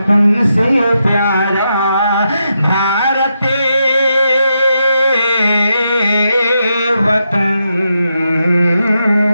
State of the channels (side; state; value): both; inverted; correlation -0.84